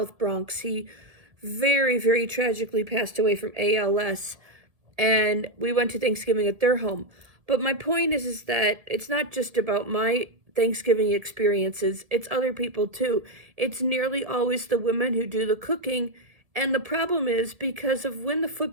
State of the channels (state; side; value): late; left; 1.7 ms